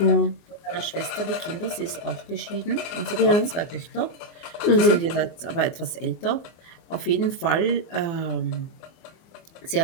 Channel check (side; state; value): right; late; 24 ms